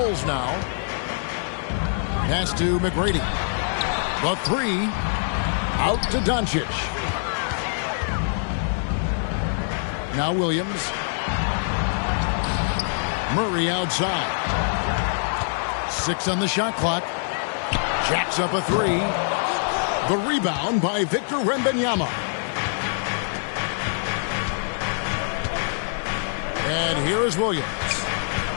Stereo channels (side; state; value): right; silent; digital silence